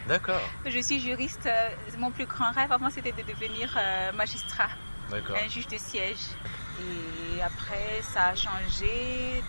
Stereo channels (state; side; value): inverted; both; correlation -1.00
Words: D'accord. Je suis juriste. Mon plus grand rêve avant c'était de devenir magistrat. D'accord. Un juge de siège. Et après ça a changé